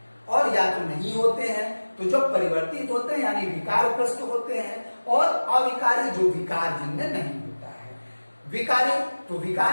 और या तो नहीं होते हैं, तो जो परिवर्तित होते हैं यानी विकारग्रस्त होते हैं, और अविकारी जो विकार जिनमें नहीं होता है। विकारी, तो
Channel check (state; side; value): inverted; both; correlation -1.00